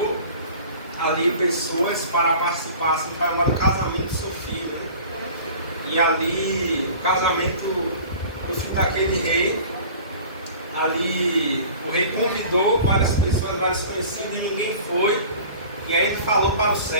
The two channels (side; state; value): both; inverted; correlation -0.43